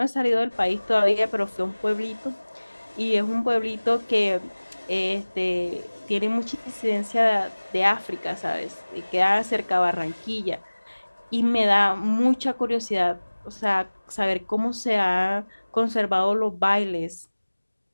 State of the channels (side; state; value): both; inverted; correlation -1.00